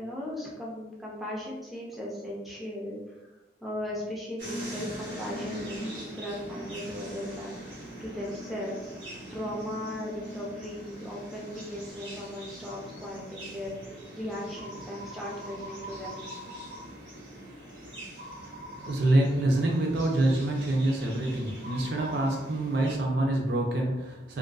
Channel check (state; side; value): normal; both; correlation 0.75